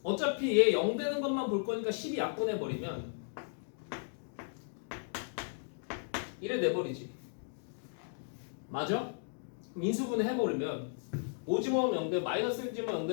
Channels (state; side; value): silent; right; digital silence